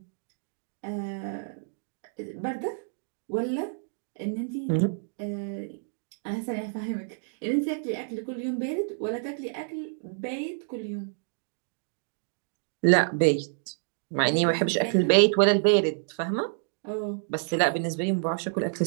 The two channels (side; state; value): left; silent; digital silence